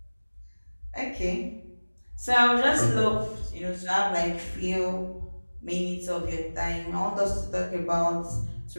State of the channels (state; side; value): inverted; both; correlation -1.00